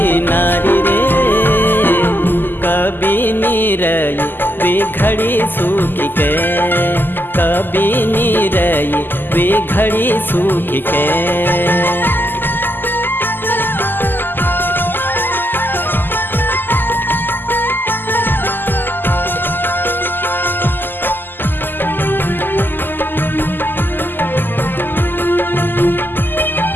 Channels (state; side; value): late; right; 0.092 ms